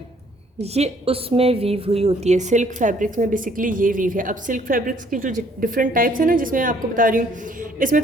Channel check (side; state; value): both; normal; correlation 0.62